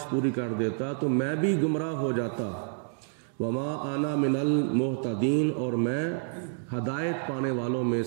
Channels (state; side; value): silent; left; digital silence